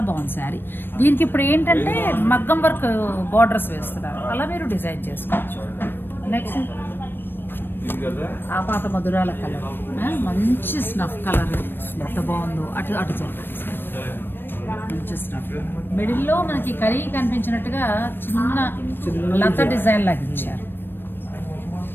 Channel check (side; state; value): right; late; 0.097 ms